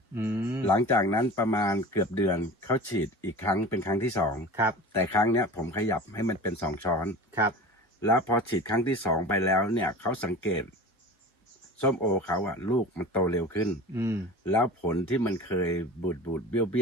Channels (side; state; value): both; normal; correlation 0.35